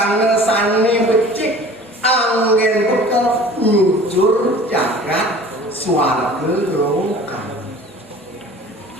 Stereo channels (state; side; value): normal; both; correlation 0.44